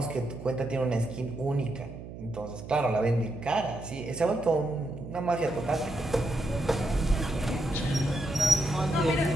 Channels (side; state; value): right; noise; hum, 12 dB below the sound